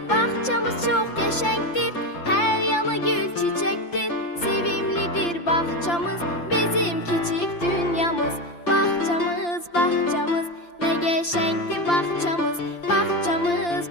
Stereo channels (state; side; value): late; right; 5.8 ms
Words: Bağçamız çox qəşəngdir, hər yanı gül çiçəkdir. Sevimlidir bağçamız, bizim kiçik dünyamız. Bağçamız, bağçamız, nə qəşəngdir bağçamız.